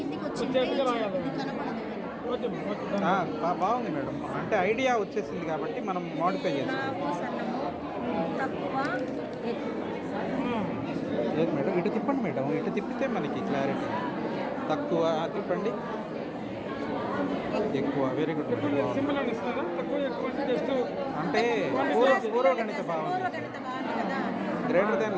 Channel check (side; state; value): both; identical; correlation 1.00